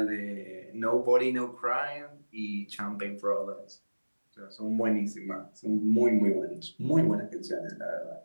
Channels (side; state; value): both; inverted; correlation -1.00